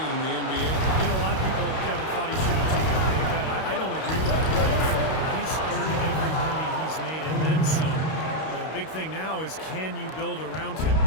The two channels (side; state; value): right; late; 32 ms